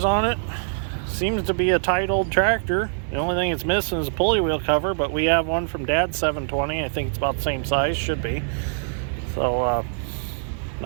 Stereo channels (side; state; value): left; silent; 63 dB below the other